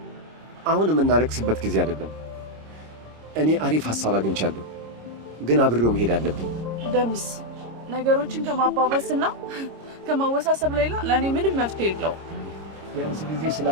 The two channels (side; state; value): left; late; 26 ms